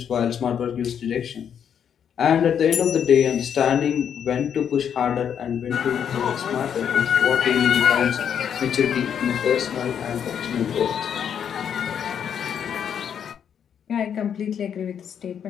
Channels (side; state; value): right; quieter; 8.3 dB